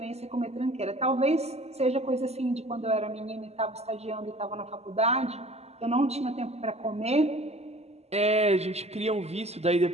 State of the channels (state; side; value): late; left; 0.30 ms